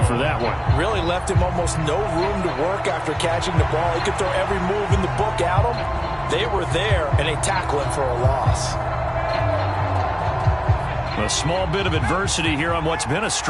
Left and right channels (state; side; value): identical; both; correlation 1.00